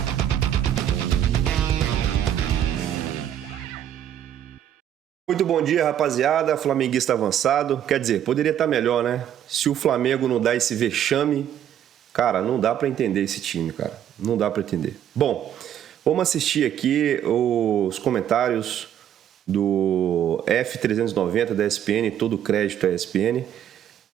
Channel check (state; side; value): quieter; left; 10.3 dB